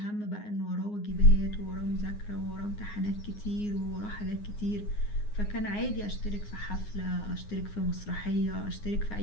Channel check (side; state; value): right; late; 9.6 ms